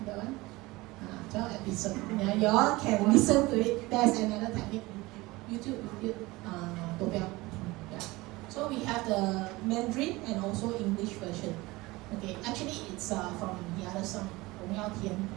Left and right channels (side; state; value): left; quieter; 21.2 dB